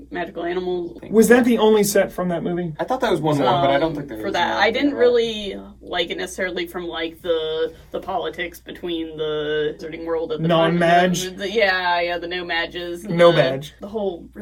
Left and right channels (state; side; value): identical; both; correlation 1.00